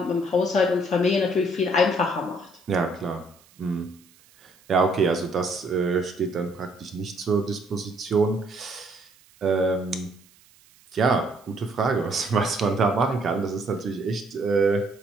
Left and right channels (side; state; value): right; noise; hiss, 29 dB below the sound